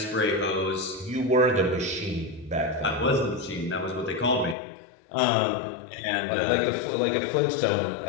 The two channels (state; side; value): drops out; right; at 4.5 s